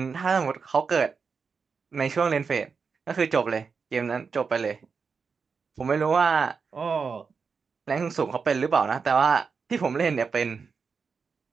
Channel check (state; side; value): quieter; left; 5.4 dB